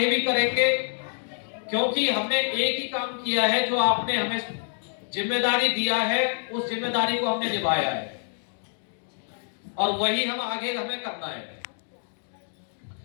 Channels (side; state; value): right; silent; 60 dB below the other